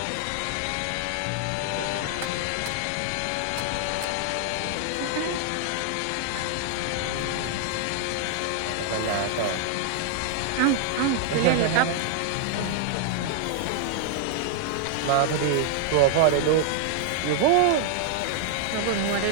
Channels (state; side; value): different; both; correlation 0.00